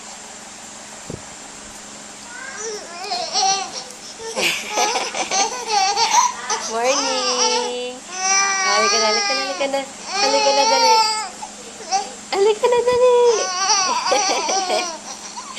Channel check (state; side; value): identical; both; correlation 1.00